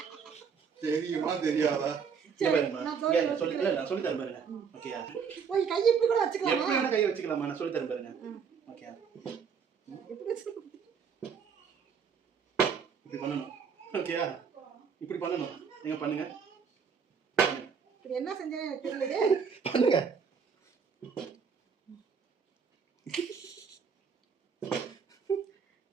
தெரியுமா தெரியாதா? நான் சொல்லி தரேன் பாருங்க. ஓகேயா? ஓய் கை இப்படி கூட வச்சுக்கலாமா? எப்படி வேணா கை வச்சுக்கலாமா? நான் சொல்லி தரேன் பாருங்க. ஓகேயா? எப்படி வச்சுக்கலாம்? இப்படி பண்ணணும். ஓகேயா? இப்படி பண்ணணும். நீங்க பண்ணுங்க. இது என்ன செஞ்சேன்னு எனக்கு தெரியலையே. பண்ணுங்க.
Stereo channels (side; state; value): left; quieter; 6.4 dB